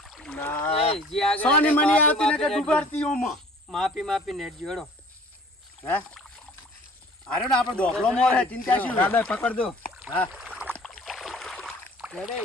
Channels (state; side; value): normal; both; correlation 0.50